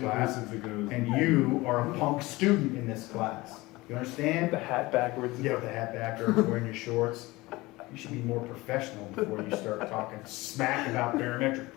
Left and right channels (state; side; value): quieter; right; 20.9 dB